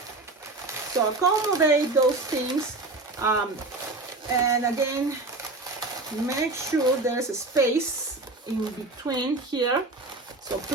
so accommodate those things, and again, make sure there's a space in between here. So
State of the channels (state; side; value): quieter; left; 3.1 dB